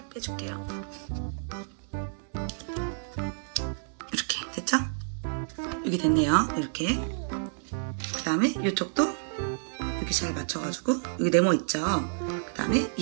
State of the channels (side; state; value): left; silent; digital silence